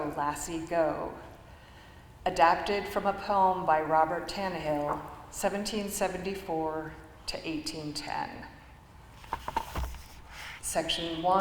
lassie, go. Adapted from a poem by Robert Tannehill, 1774 to 1810. Section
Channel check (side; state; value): both; identical; correlation 1.00